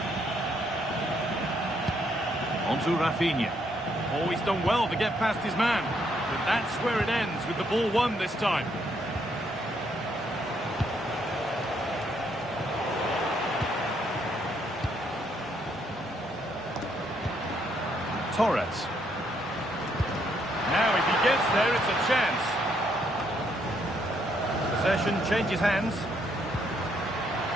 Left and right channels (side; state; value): both; normal; correlation 0.72